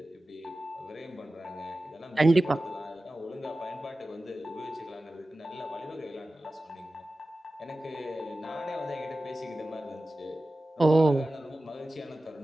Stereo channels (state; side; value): normal; both; correlation 0.95